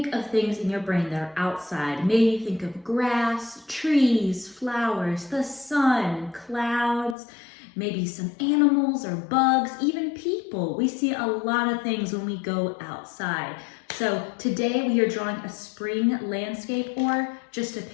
of things in your brain that are outside, maybe you think of grass, trees, flowers, the sun, clouds, maybe some animals or bugs, even people. We see a lot of things when we go outside. So today we are drawing a spring landscape or just a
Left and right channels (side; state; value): right; drops out; at 7.2 s